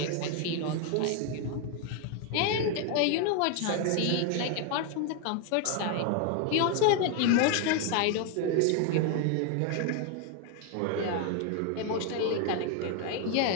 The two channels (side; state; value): both; different; correlation 0.01